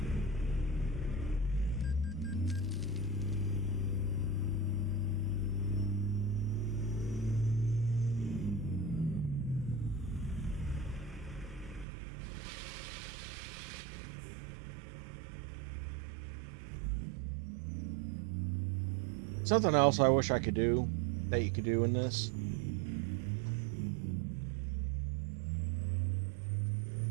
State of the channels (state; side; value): drops out; left; at 11.9 s